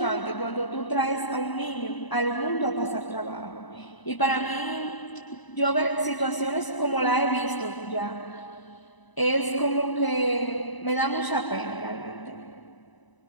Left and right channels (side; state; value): right; late; 1.0 ms